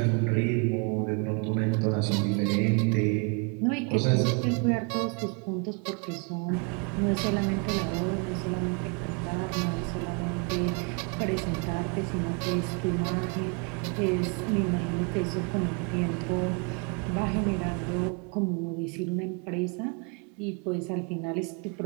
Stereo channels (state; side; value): quieter; left; 34.4 dB